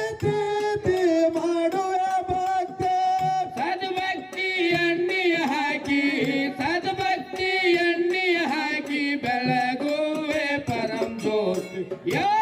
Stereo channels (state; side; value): identical; both; correlation 1.00